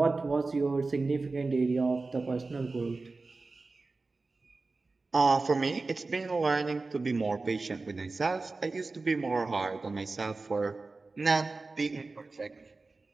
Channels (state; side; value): quieter; left; 3.7 dB